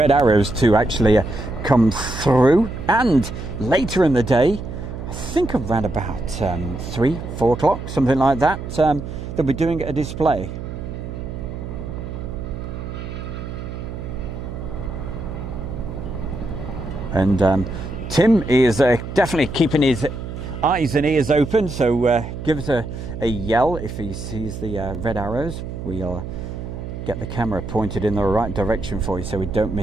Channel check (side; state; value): right; noise; hum, 8 dB below the sound